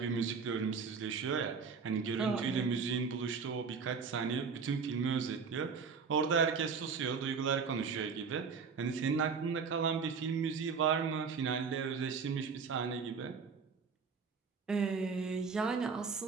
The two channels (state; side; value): quieter; left; 5.5 dB